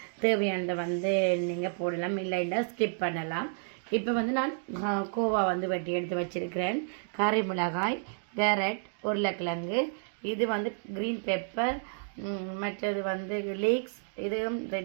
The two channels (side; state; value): left; silent; digital silence